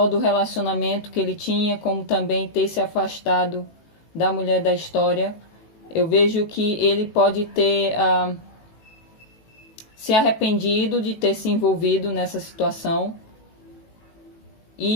do relacionamento que ele tinha, como também ter se afastado da mulher da história. Eu vejo que ele pode ter se arrependido de ter se envolvido nessa situação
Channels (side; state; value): right; late; 18 ms